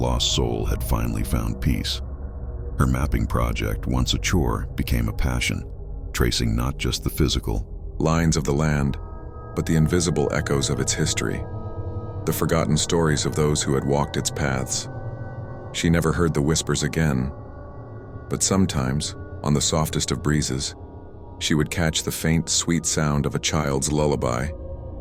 soul had finally found peace. Her mapping project, once a chore, became a passion, tracing not just the physical lines of the land, but the invisible echoes of its history, the forgotten stories of those who had walked its paths. She never heard the whispers again, but sometimes, on the softest of breezes, she would catch the faint, sweet sound of a child's lullaby,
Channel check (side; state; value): both; identical; correlation 1.00